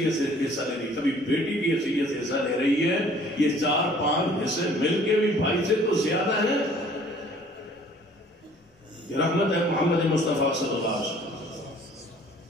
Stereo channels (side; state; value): both; normal; correlation 0.55